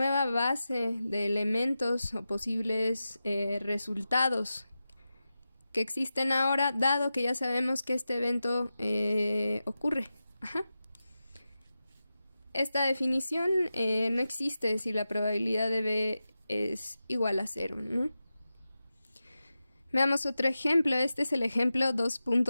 base de elementos o posibles resultados que existen ahora, dado que ya sabemos que este evento ocurre. Esta definición no existe si la probabilidad de B es igual a 0, ¿no? Veamos otro ejemplo. Este es el ejemplo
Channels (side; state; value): both; inverted; correlation -0.92